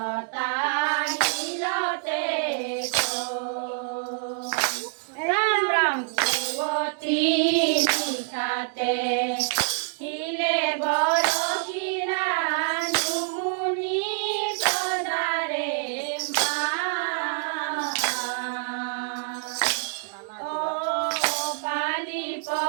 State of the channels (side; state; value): left; silent; digital silence